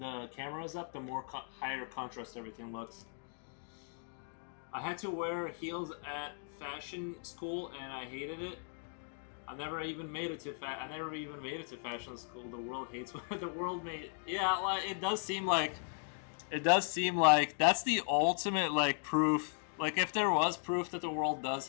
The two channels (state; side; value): silent; right; 53 dB below the other